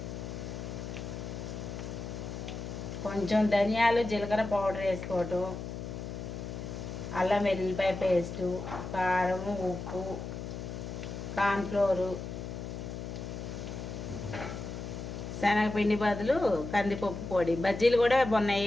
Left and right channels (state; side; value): noise; left; hum, 7 dB below the sound